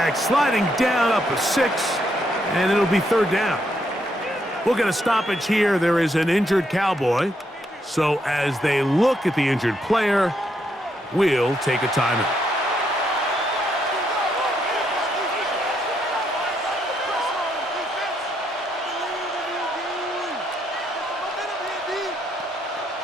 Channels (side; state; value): both; normal; correlation 0.76